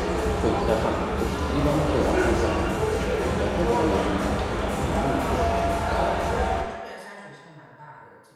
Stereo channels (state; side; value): identical; both; correlation 1.00